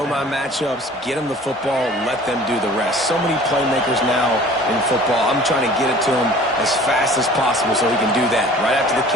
my matchups, get them the football, let them do the rest. So many playmakers now in football. I'm trying to get it to him as fast as possible so he can do that. Right after the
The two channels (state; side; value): normal; both; correlation 0.47